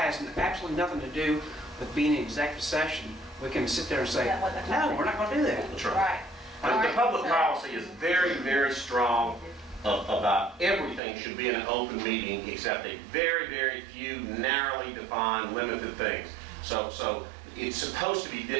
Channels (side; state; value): left; drops out; at 11.0 s